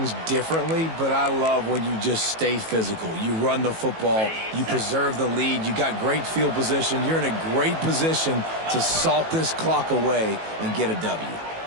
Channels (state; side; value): late; left; 18 ms